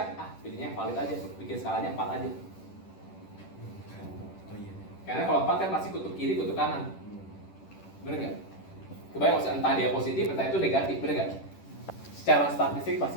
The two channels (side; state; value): right; late; 10 ms